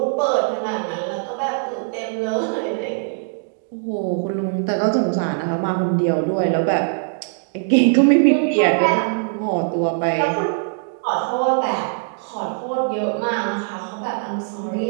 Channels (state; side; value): silent; left; digital silence